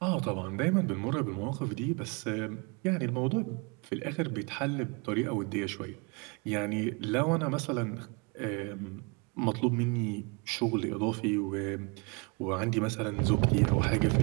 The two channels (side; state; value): left; quieter; 31.4 dB